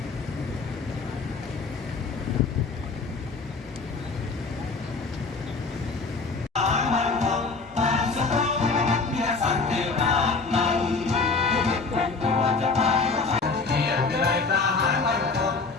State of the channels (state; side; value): quieter; right; 4.2 dB